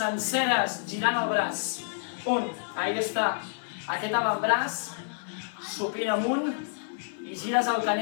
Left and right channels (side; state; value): right; silent; 56 dB below the other